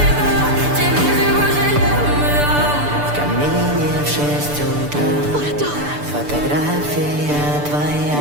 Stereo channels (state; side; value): late; left; 6.8 ms